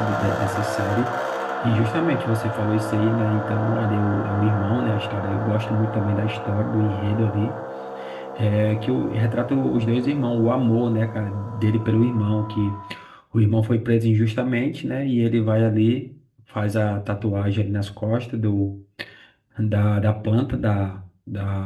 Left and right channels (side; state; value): both; identical; correlation 1.00